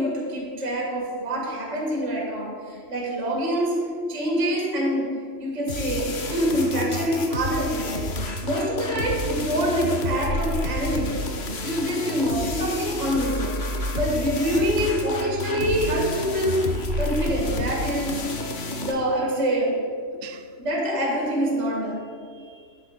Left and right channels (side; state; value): left; late; 3.0 ms